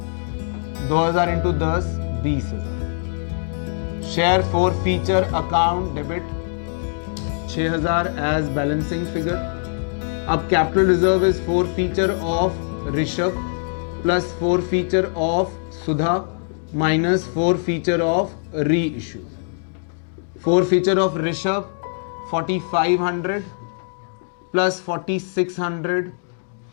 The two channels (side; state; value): right; silent; digital silence